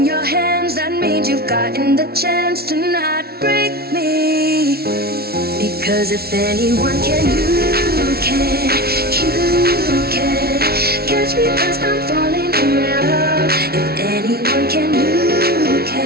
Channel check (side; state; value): left; late; 0.45 ms